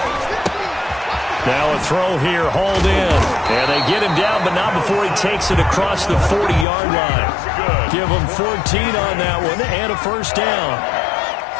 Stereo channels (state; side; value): drops out; right; at 6.7 s